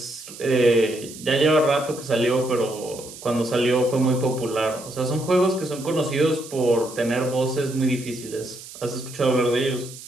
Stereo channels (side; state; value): right; noise; hiss, 15 dB below the sound